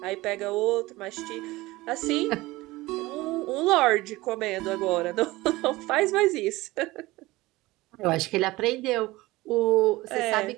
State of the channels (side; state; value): left; quieter; 19.6 dB